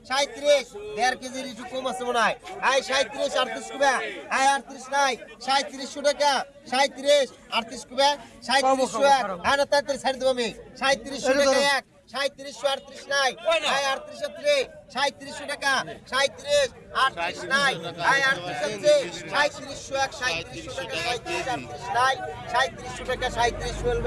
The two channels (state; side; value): identical; both; correlation 1.00